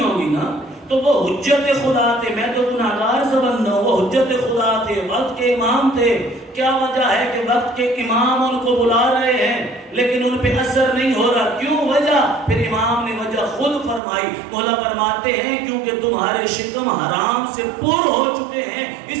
نا۔ تو وہ حجت خدا تھے، میں تو گناہگار سے بندہ ہوں، وہ حجت خدا تھے، وقت کے امام تھے۔ کیا وجہ ہے کہ وقت کے امام ان کو بلا رہے ہیں لیکن ان پہ اثر نہیں ہو رہا؟ کیوں وجہ؟ پھر امام نے وجہ خود فرمائی۔ مولا فرماتے ہیں کیونکہ تمہارے شکم حرام سے پر ہو چکے ہیں،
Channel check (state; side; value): drops out; left; at 14.0 s